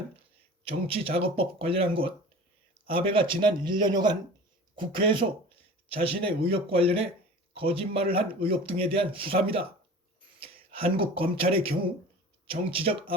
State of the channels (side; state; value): both; normal; correlation 0.39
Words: 정치자금법 관련한 것, 아베가 지난 1년여간 국회에서 자신의 의혹 관련해 거짓말을 한 의혹 등에 대한 수사입니다. 한국 검찰의 경우 정치적